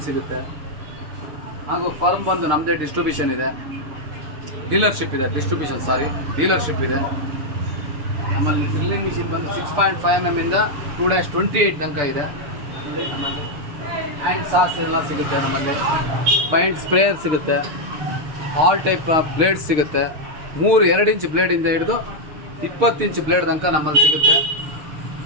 ಸಿಗುತ್ತೆ. ಹಾಗೂ ಫರ್ಮ್ ಬಂದು ನಮ್ಮದೇ ಡಿಸ್ಟ್ರಿಬ್ಯೂಷನ್ ಇದೆ, ಡೀಲರ್ಶಿಪ್ ಇದೆ. ನಮ್ಮಲ್ಲಿ ಡ್ರಿಲ್ಲಿಂಗ್ ಮಿಷಿನ್ ಬಂದು 6.5 mm ಇಂದ 2-28 ತನಕ ಇದೆ. ನೋಡಿ ನಮ್ಮಲ್ಲಿ ಹ್ಯಾಂಡ್ ಸಾಸ್ ಎಲ್ಲ ಸಿಗುತ್ತೆ. ನಮ್ಮಲ್ಲಿ ಪೈಂಟ್ ಸ್ಪ್ರೇಯರ್ ಸಿಗುತ್ತೆ. ಆಲ್ ಟೈಪ್ ಬ್ಲೇಡ್ಸ್ ಸಿಗುತ್ತೆ. 2 ಇಂಚ್ ಬ್ಲೇಡಿಂದ ಹಿಡಿದು 20 ಇಂಚ್ ಬ್ಲೇಡ್ ತನಕ ನಮ್ಮಲ್ಲಿ ಸಿಗುತ್ತೆ.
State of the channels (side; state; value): left; late; 6.5 ms